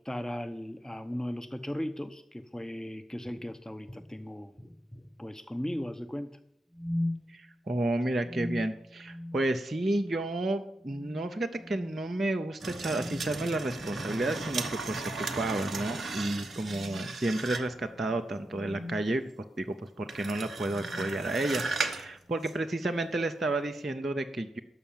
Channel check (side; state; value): both; normal; correlation 0.86